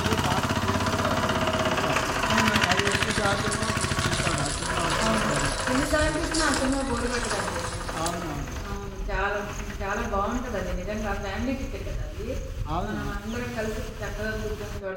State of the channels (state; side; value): identical; both; correlation 1.00